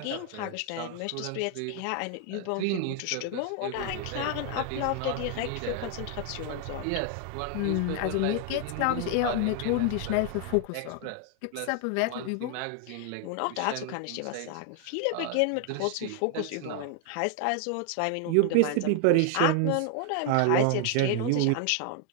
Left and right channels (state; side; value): different; both; correlation 0.00